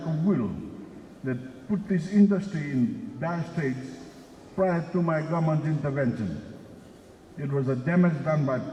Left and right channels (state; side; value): identical; both; correlation 1.00